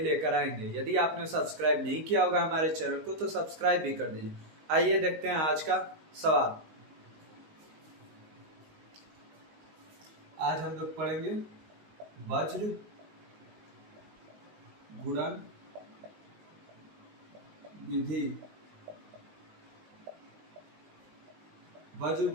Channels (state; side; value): late; left; 19 ms